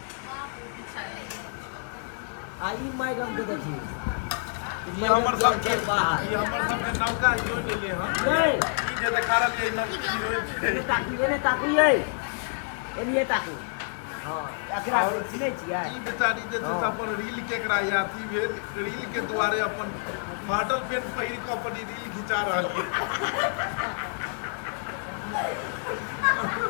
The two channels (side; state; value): right; silent; digital silence